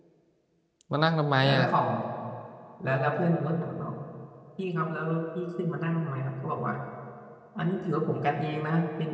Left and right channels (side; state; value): both; identical; correlation 1.00